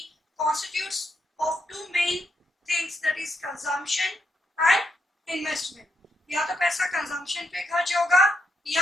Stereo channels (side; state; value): both; normal; correlation 0.80